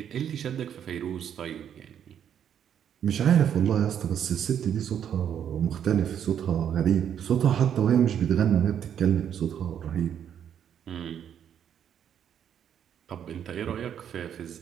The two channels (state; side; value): quieter; left; 9.1 dB